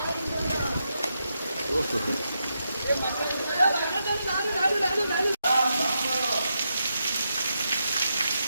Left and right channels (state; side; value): inverted; both; correlation -0.84